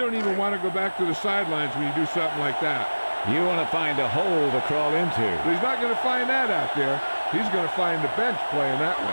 even want to go back to the sidelines when you do something like that. You want to find a hole to crawl into. But he's not going to find that out there. He's going to find the bench playing that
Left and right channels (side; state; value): both; inverted; correlation -1.00